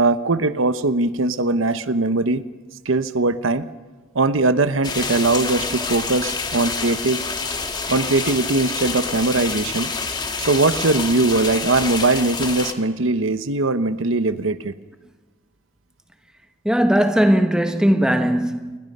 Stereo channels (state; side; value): normal; both; correlation 0.19